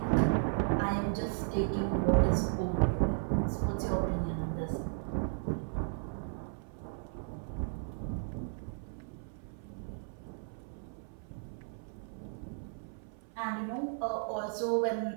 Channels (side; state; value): left; silent; 54 dB below the other